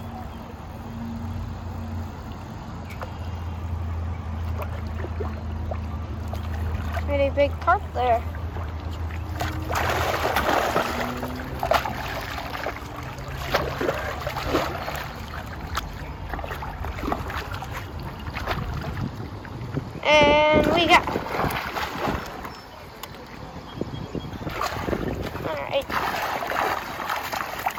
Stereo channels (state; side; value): identical; both; correlation 1.00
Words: Pretty big carp there. And we got.